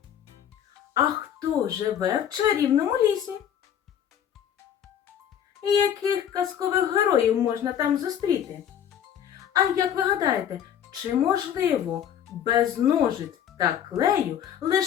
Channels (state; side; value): quieter; right; 9.5 dB